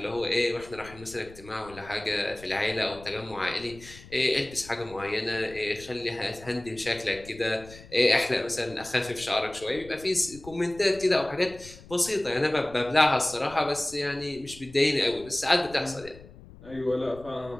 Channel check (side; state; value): left; noise; rumble, 19 dB below the sound